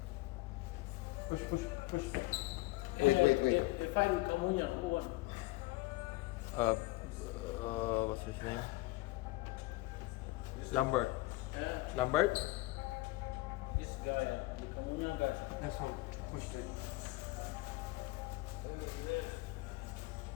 Push. Wait. The fight with Kamunyan, who won? What's his name? Lambert. Yeah, Lambert? this guy, the Kamunyan guy. That's one. Push it.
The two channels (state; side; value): quieter; right; 20.2 dB